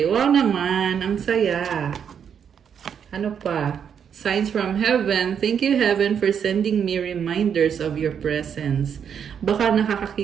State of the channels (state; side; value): quieter; left; 7.8 dB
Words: Wow naman. Ang saya. Ano pa? Signs from heaven. Thank you, heaven, for sending me reminders of your presence. Baka